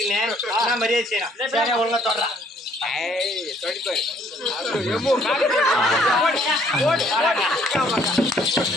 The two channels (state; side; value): normal; both; correlation 0.63